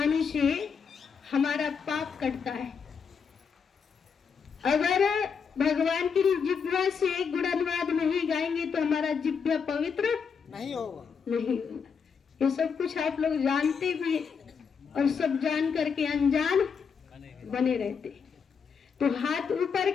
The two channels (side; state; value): right; quieter; 6.2 dB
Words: से हमारा पाप कटता है। अगर भगवान की जिह्वा से गुणानुवाद नहीं गाएंगे तो हमारा जिह्वा पवित्र नहीं होगा। ये सब कुछ आप लोग जानते भी और सब जान करके अनजान बने रहते। तो हाथ ऊपर